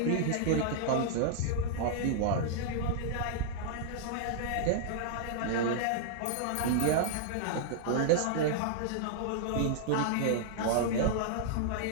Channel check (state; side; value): different; both; correlation -0.01